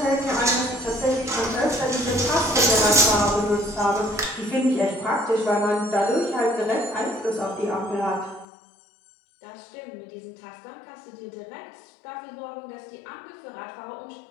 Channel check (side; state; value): right; drops out; at 8.5 s